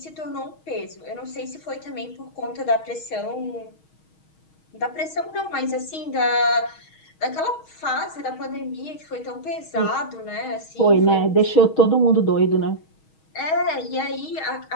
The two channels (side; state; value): right; late; 6.3 ms